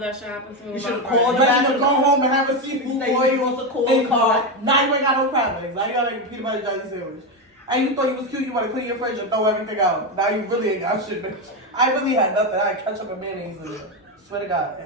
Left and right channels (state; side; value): normal; both; correlation 0.11